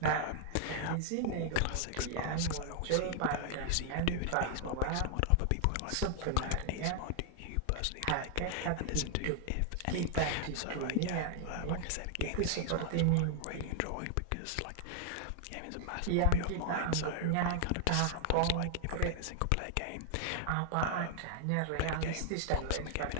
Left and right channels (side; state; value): both; different; correlation 0.00